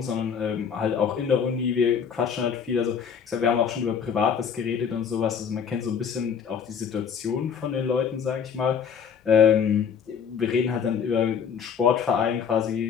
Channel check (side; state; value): right; quieter; 7.1 dB